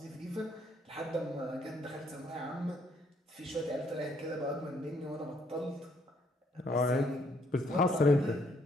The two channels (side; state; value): both; normal; correlation 0.68